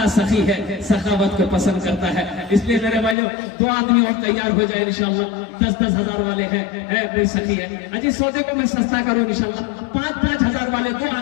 सखी है, सखावत को पसंद करता है। इसलिए मेरे भाइयों 2 आदमी और तैयार हो जाए इंशाल्लाह। 10-10 हजार वाले हैं, कोई सखी है अजी सौदे को मैं सस्ता करूँ इंशाल्लाह। 5-5 हजार वाले 2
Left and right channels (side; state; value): right; drops out; at 3.2 s